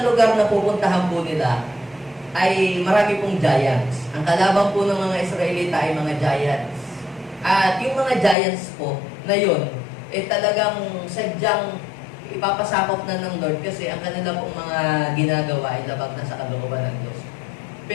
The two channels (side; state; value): right; drops out; at 8.3 s